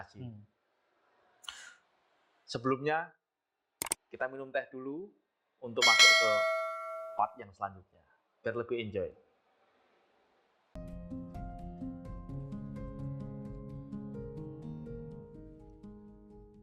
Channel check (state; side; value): identical; both; correlation 1.00